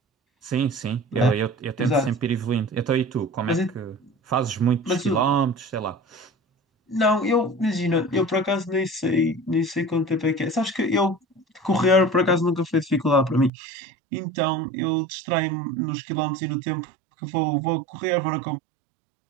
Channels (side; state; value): left; drops out; at 13.5 s